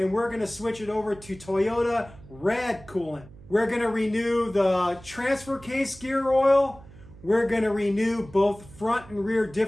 we're going to switch it over to Toyota red coolant. We're going to renew the transfer case gear oil. We're going to renew both front and rear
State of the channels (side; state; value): right; noise; hum, 20 dB below the sound